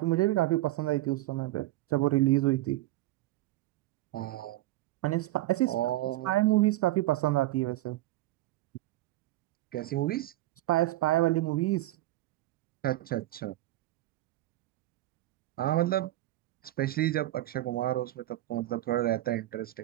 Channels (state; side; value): quieter; left; 16.4 dB